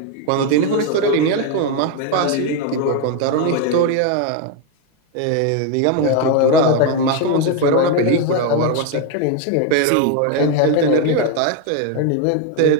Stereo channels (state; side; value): different; both; correlation 0.01